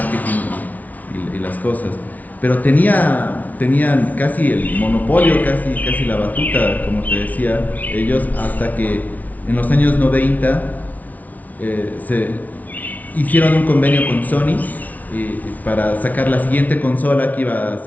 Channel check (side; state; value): right; late; 0.075 ms